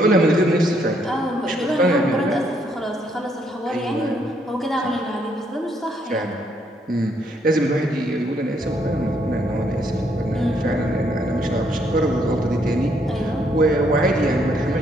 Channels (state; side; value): normal; both; correlation 0.71